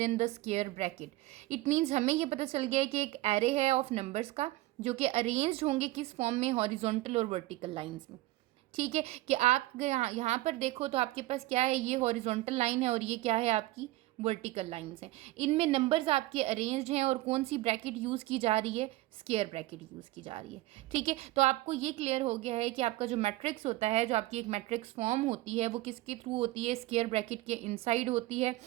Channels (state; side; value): quieter; left; 18.3 dB